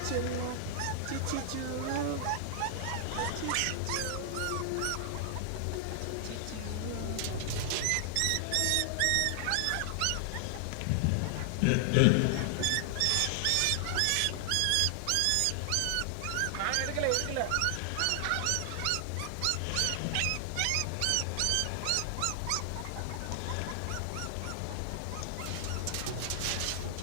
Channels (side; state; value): both; different; correlation 0.00